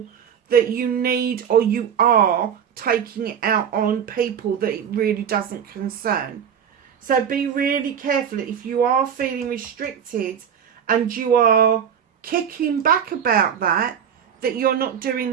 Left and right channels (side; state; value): left; quieter; 8.2 dB